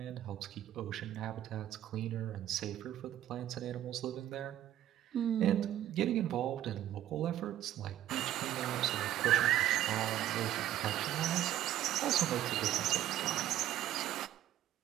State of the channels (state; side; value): quieter; left; 12.6 dB